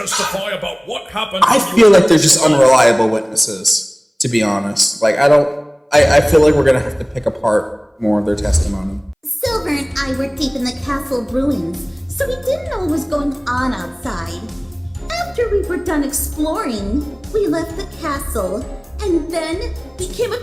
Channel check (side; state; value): both; identical; correlation 1.00